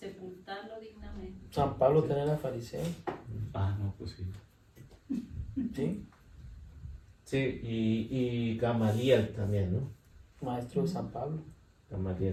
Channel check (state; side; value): identical; both; correlation 1.00